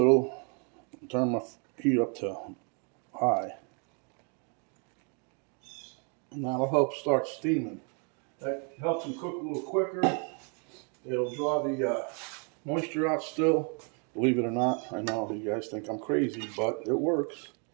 Turn my heat up to high, and that'll help start steaming. That helps them cook a little quicker. It'll draw the moisture out still. Believe it or not, I know you guys think I'm crazy, but it works.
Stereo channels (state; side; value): quieter; left; 37.7 dB